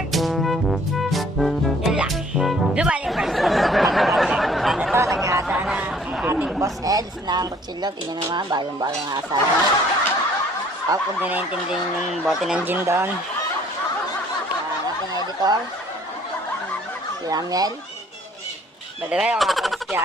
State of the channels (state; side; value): normal; both; correlation 0.58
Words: Yun lang. Blue Marlin versus Black Panther. Sana to, nag-aasa na ang ating boss Eds ng kutsilyo. Tingnan naman, balong-balong asa na. Kung di naintindihan yung bote ng gin doon. Ang ating editor, si Amiel. By the way, ako nga pala si